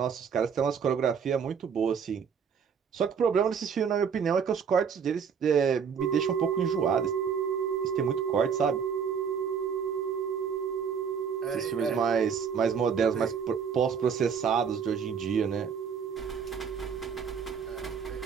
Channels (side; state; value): left; quieter; 6.8 dB